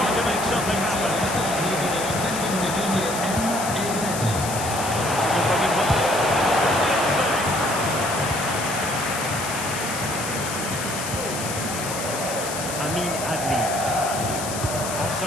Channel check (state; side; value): noise; left; hiss, 6 dB below the sound